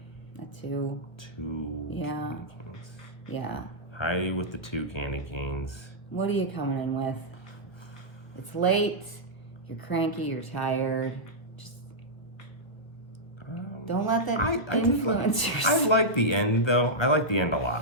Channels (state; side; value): late; right; 1.3 ms